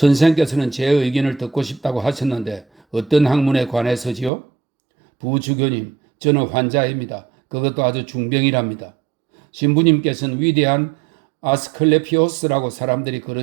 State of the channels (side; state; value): left; drops out; at 4.3 s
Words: 제 의견을 듣고 싶다고 하셨는데 어떤 학문에 관해서지요? 부주교님, 저는 환자입니다. 그것도 아주 중병이랍니다. 신부님께서는 위대한 아스클레피오스라고 사람들이